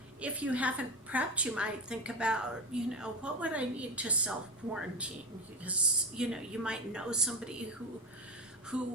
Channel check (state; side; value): normal; both; correlation 0.22